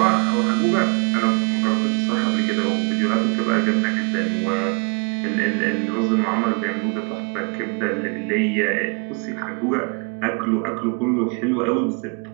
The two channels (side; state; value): left; quieter; 33.6 dB